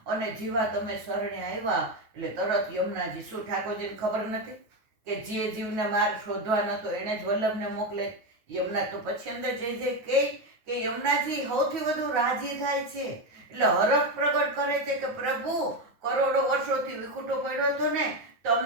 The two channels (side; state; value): left; late; 9.6 ms